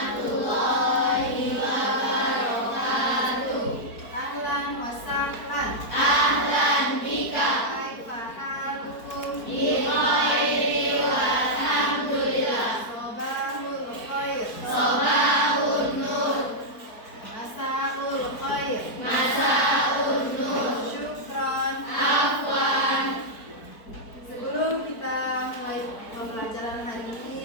wabarakatuh. Ahlan wa sahlan. Ahlan bika. Kaifa halukum? Bi khairi walhamdulillah. Sobahul khair. Sobahun nur. Masaul khair. Masaun nur. Syukron. Afwan. Sebelum kita mulai pembelajaran hari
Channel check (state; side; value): late; right; 4.5 ms